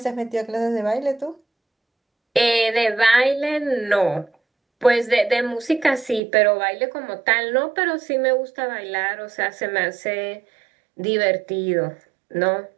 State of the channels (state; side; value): drops out; left; at 6.2 s